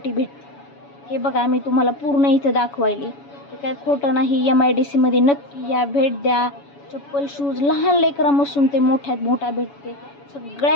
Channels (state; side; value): late; right; 7.1 ms